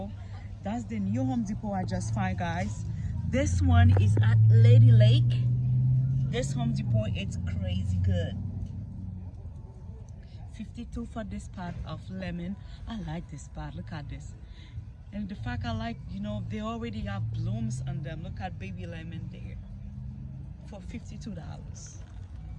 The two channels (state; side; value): identical; both; correlation 1.00